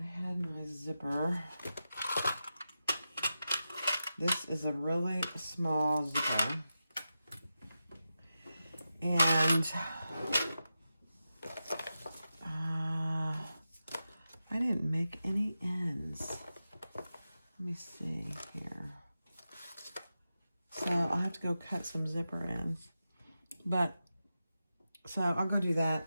had my zipper. This is a really small zipper. And I didn't make any ends. Let me see here. So I'll have to go cut some zipper ends. But, so I'll go do that.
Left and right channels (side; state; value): both; inverted; correlation -0.91